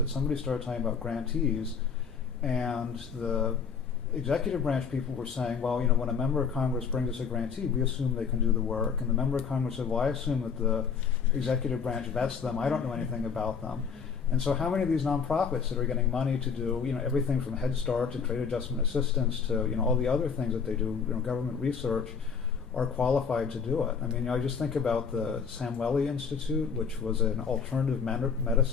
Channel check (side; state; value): right; quieter; 6.2 dB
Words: somebody started talking about grantees, and the executive branch people were saying, well, when a member of Congress brings us a grantee, we assume they can do the work. And the member of Congress said, well, I assume that the executive branch vets them. I don't know anything about them. And so how many of these nonprofits that are getting money to do everything from Head Start to trade adjustment assistance to all the other things that they do, government research, are qualified to do it? I just think about the Samweli Institute, which was an alternative